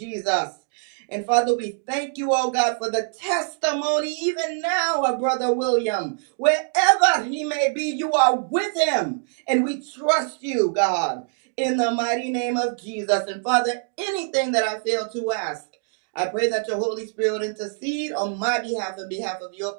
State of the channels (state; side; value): silent; left; digital silence